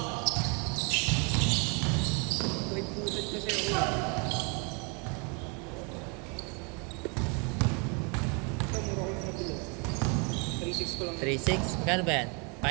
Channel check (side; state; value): left; quieter; 33.9 dB